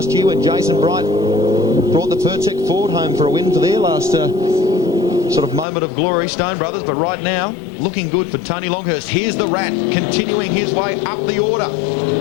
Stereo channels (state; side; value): drops out; right; at 5.7 s